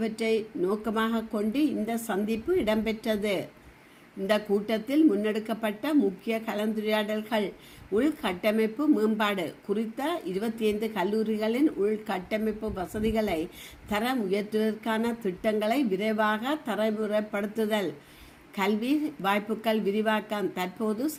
நோக்கமாக கொண்டு இந்த சந்திப்பு இடம்பெற்றது. இந்த கூட்டத்தில் முன்னெடுக்கப்பட்ட முக்கிய கலந்துரையாடல்கள் உள்கட்டமைப்பு மேம்பாடு குறித்த 25 கல்லூரிகளின் உள்கட்டமைப்பு வசதிகளை தரம் உயர்த்துவதற்கான திட்டங்களை விரைவாக தரமுறைப்படுத்துதல், கல்வி வாய்ப்புகள் விரிவாக்கம், தற்போது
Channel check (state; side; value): identical; both; correlation 1.00